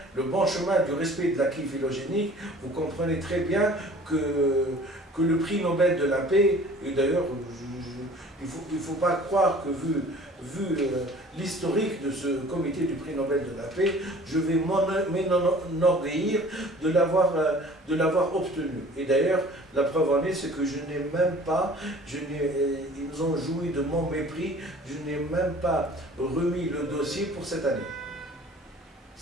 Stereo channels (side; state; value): both; normal; correlation 0.48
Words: le bon chemin du respect de l'acquis phylogénique, vous comprenez très bien que le prix Nobel de la paix, et d'ailleurs il ne faut pas croire que vu l'historique de ce comité du prix Nobel de la paix, je vais m'enorgueillir de l'avoir obtenu. Et d'ailleurs, la preuve en est, c'est que je n'ai même pas, ils ont joui de mon mépris, je n'ai même pas remis le dossier pour cette année.